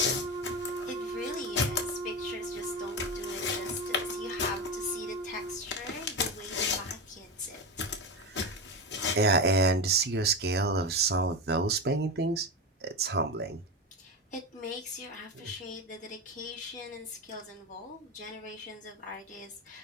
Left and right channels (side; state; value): both; normal; correlation 0.18